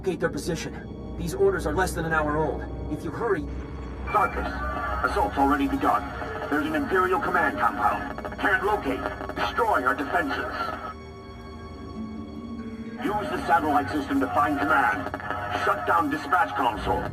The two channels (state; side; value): identical; both; correlation 1.00